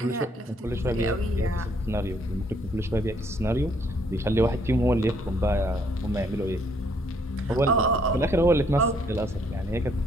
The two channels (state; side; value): normal; both; correlation 0.67